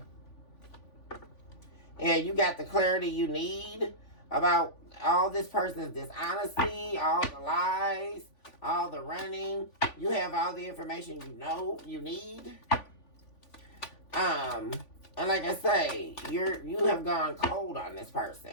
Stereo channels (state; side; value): late; right; 3.5 ms